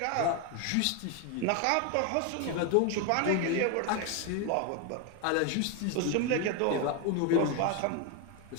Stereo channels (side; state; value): both; different; correlation 0.01